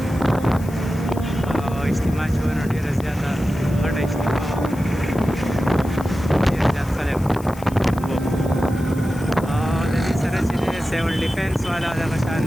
او اجتماع چې وه نو ډېره زیاته غټه اجتماع وه ډېر زیات خلک وو او د دې سره چې دی سیول ډیفینس والا دغه شان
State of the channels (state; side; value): noise; left; hiss, 20 dB below the sound